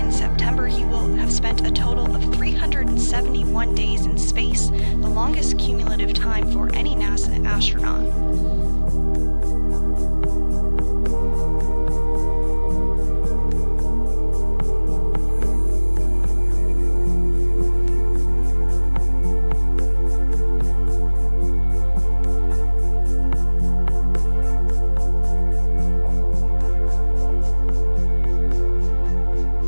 September, he will have spent a total of 371 days in space, the longest cumulative time for any NASA astronaut.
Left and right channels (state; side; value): inverted; both; correlation -1.00